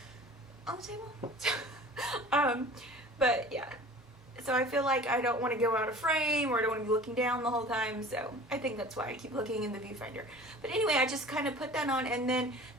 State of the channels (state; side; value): normal; both; correlation 0.42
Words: on the table. But yeah, so I feel like I don't want to go out of frame, or I don't want to be looking down the whole time, so I think that's why I keep looking in the viewfinder. But anyway, I just kind of put that on, and then